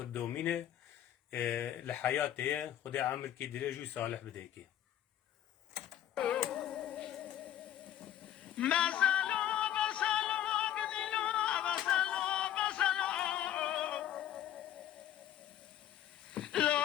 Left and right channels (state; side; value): quieter; right; 11.5 dB